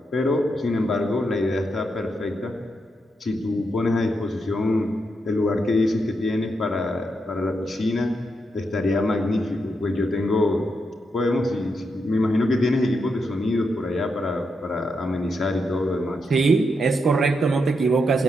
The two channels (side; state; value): both; normal; correlation 0.82